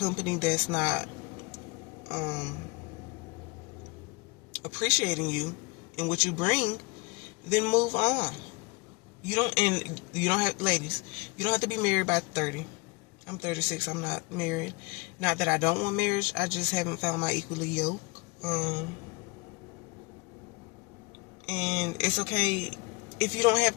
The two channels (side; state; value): right; quieter; 26.7 dB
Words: that's not appreciating you and what you bring, then move on. You don't have, ladies, you don't have to be married by 30. I'm 36. I'm not married. Not that I don't want marriage. I just haven't found my equally yoke. And it's okay if you don't have